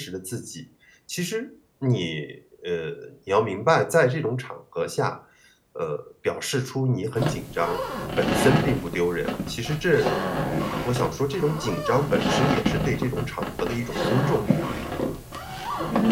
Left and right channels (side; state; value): both; identical; correlation 1.00